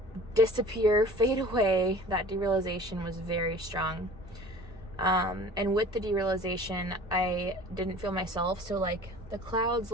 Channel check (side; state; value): both; normal; correlation 0.44